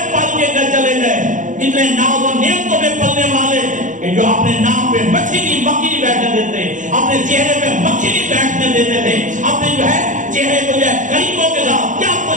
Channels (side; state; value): left; late; 0.37 ms